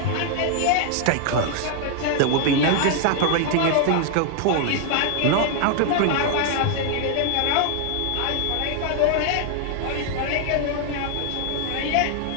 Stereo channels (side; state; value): both; different; correlation 0.00